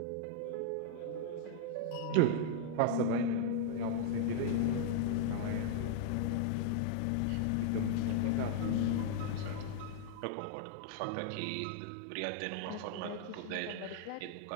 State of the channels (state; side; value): different; both; correlation -0.01